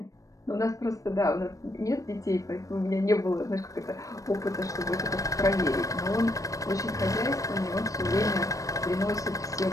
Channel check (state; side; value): late; right; 0.16 ms